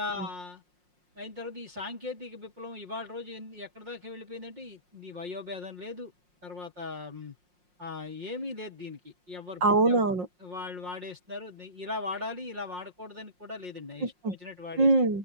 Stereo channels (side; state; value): left; late; 5.6 ms